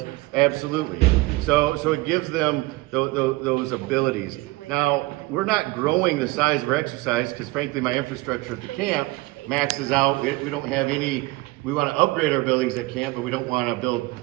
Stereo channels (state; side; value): quieter; left; 21.5 dB